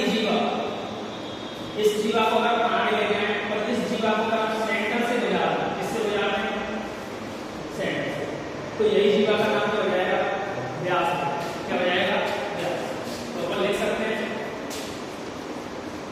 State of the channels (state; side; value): identical; both; correlation 1.00